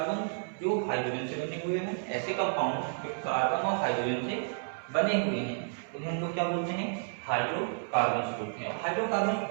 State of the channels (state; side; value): silent; left; 57 dB below the other